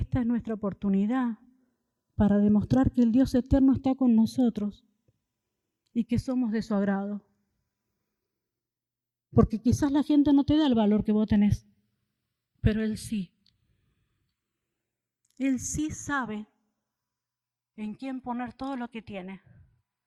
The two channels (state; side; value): identical; both; correlation 1.00